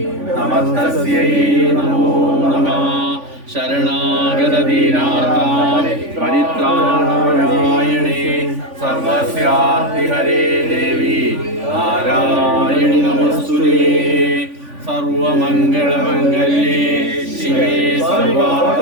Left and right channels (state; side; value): late; left; 3.5 ms